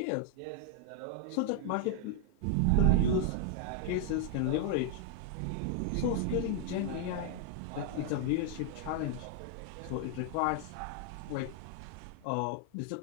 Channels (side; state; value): both; different; correlation 0.00